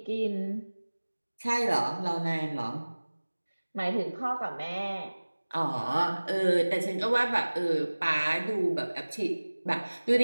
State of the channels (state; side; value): inverted; both; correlation -1.00